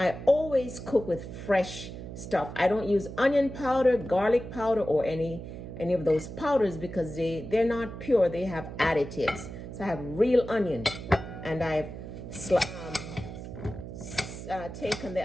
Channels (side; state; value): right; noise; hum, 10 dB below the sound